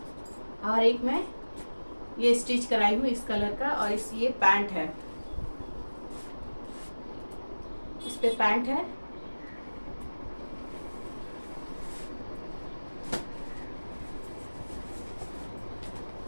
और एक मैं ये स्टिच कराई हूँ इस कलर का, और इस ये पैंट है, इस पे पैंट है।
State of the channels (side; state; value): both; inverted; correlation -1.00